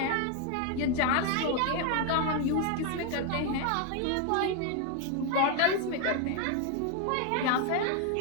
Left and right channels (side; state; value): both; different; correlation 0.01